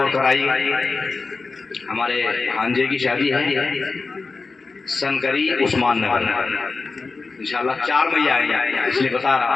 کرائی۔ ہمارے ہانجے کی شادی ہے سنکری عثمان نگر، انشاءاللہ 4 مئی آئیں گے، اس لیے بتا رہا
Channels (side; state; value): right; quieter; 4.1 dB